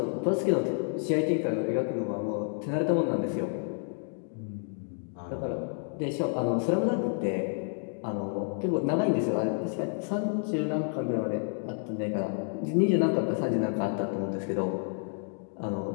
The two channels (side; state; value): right; silent; 58 dB below the other